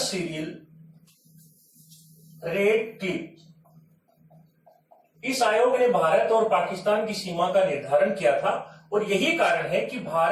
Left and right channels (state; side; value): identical; both; correlation 1.00